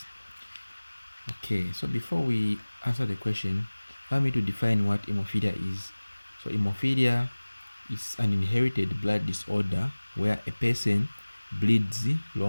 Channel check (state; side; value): inverted; both; correlation -1.00